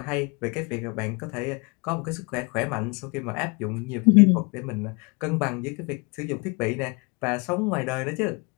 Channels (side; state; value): right; quieter; 30.0 dB